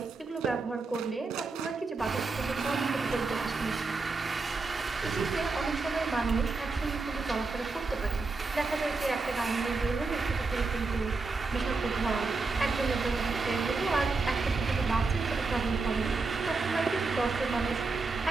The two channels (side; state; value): left; quieter; 4.0 dB